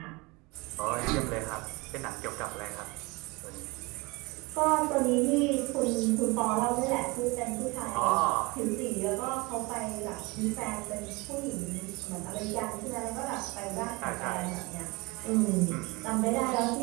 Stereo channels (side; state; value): left; quieter; 25.3 dB